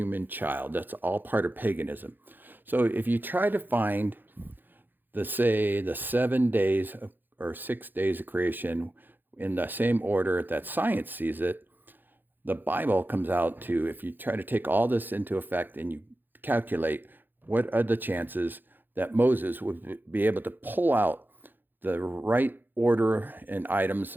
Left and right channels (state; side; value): late; left; 0.091 ms